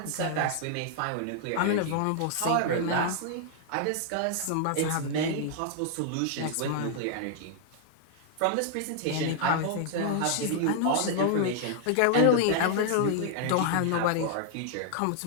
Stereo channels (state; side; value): different; both; correlation 0.00